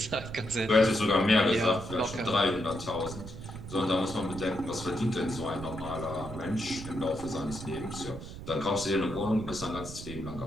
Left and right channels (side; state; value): right; noise; rumble, 11 dB below the sound